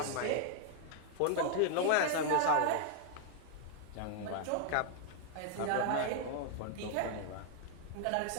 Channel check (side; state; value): both; different; correlation 0.00